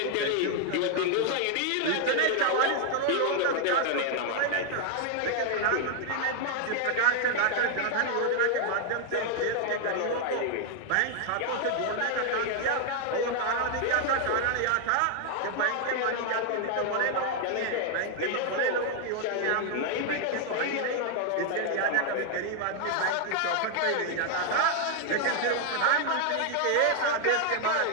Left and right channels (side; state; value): both; different; correlation 0.00